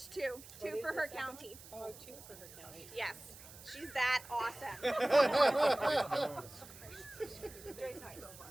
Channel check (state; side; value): noise; right; hiss, 17 dB below the sound